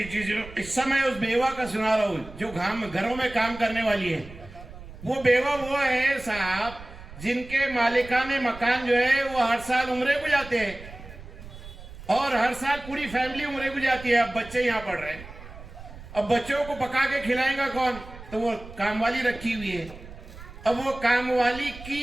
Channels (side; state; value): right; noise; rumble, 16 dB below the sound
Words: قصہ میں اس بیوہ کا سنا رہا ہوں جو گھروں میں کام کرنے والی ہے. وہ بیوہ وہ ہے صاحب جن کے مالکان مکان جو ہے وہ ہر سال عمرے کو جاتے ہیں اور ہر سال پوری فیملی عمرے کو جاتی ہے. اب بچے یہاں پڑھ رہے ہیں, اب بچوں کو پکا کے کھلائیں گا کون؟ تو وہ کام والی رکھی ہوئی ہے. اب وہ کام والی